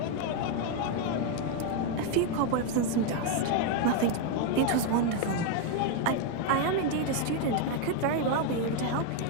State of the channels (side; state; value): both; different; correlation 0.01